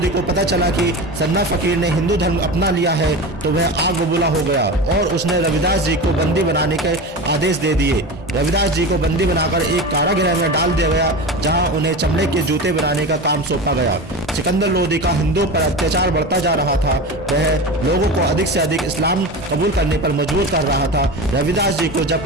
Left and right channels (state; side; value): normal; both; correlation 0.27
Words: को पता चला कि सदना फकीर ने हिंदू धर्म अपना लिया है तो वह आग बबूला हो गया और उसने रविदास जी को बंदी बनाने के आदेश दे दिए। रविदास जी को बंदी बनाकर एक कारागृह में डाल दिया गया, जहां उन्हें चमड़े के जूते बनाने का काम सौंपा गया। सिकंदर लोदी का हिंदुओं पर अत्याचार बढ़ता जा रहा था। वह लोगों को अधिक से अधिक इस्लाम कबूल करने पर मजबूर कर रहा था। रविदास जी को